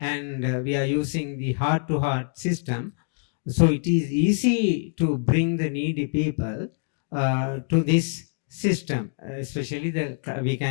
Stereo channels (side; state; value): right; silent; digital silence